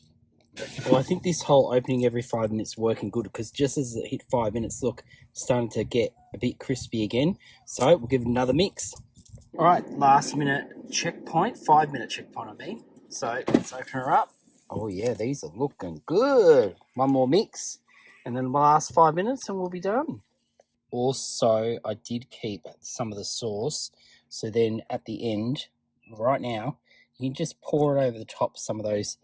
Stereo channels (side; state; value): both; identical; correlation 1.00